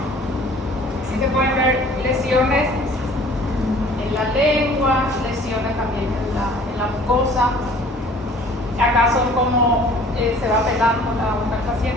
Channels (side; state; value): both; normal; correlation 0.51